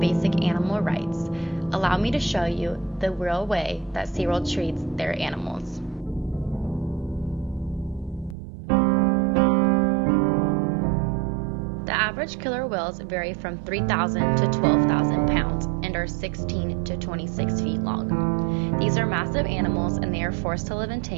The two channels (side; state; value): left; drops out; at 8.3 s